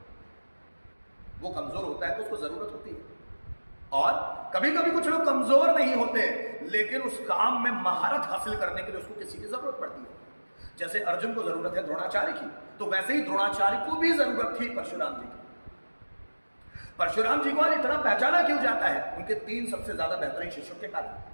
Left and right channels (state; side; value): inverted; both; correlation -1.00